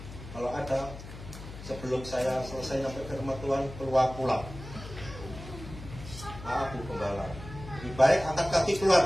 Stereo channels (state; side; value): noise; left; hum, 13 dB below the sound